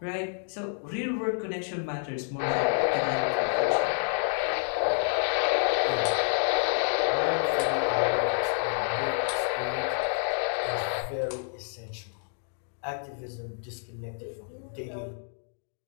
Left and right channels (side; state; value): right; silent; 59 dB below the other